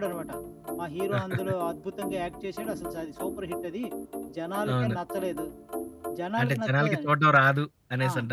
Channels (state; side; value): identical; both; correlation 1.00